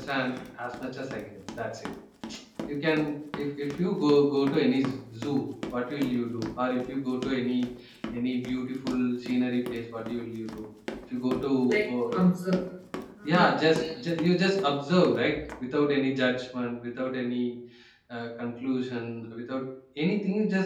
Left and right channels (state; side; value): identical; both; correlation 1.00